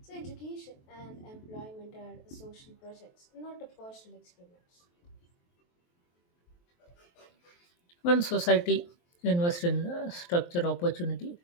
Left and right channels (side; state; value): right; late; 23 ms